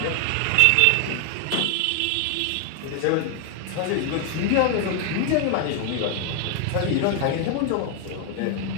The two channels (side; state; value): both; different; correlation 0.00